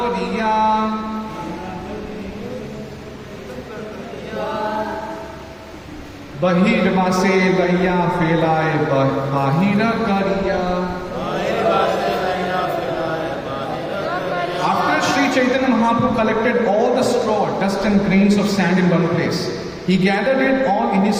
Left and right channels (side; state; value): both; identical; correlation 1.00